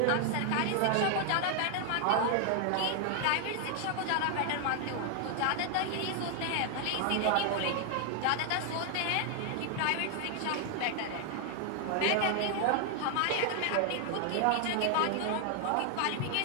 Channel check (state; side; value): different; both; correlation 0.00